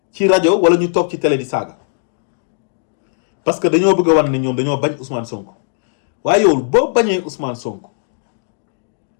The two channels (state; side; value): silent; right; digital silence